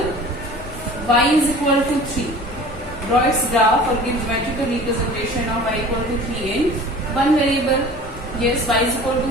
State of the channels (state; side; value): normal; both; correlation 0.42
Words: Y is equal to 3. Draw its graph or give geometrical representation of y equal to 3 in one variable. Yes, y is equal to